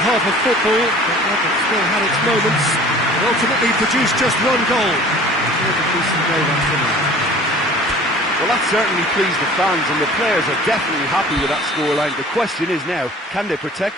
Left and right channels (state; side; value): normal; both; correlation 0.46